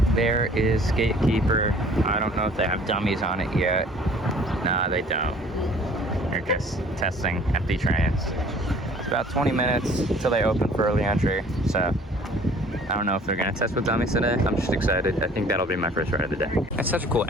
There is Gatekeeper. I don't know if they have dummies on it yet. Nah, they don't. They're just testing empty trains. It's about 20 minutes until they open for early entry, so I don't know if they're gonna test with dummies today. I'm just excited. I think that'll be my first ride of the day. It's such a cool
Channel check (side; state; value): both; normal; correlation 0.52